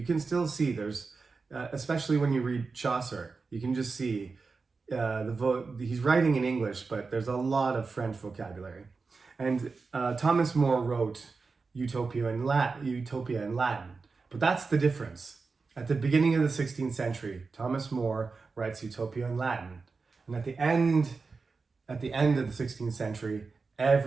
can still see there's, especially when you read Chaucer, you can just see he's writing in English, but there's a lot of French vocabulary. And Thomas More wrote Utopia in Latin, but that's the difference. At the beginning of the 16th century, Thomas More writes Utopia in Latin, and at the end of the 16th century,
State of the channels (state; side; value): quieter; left; 4.4 dB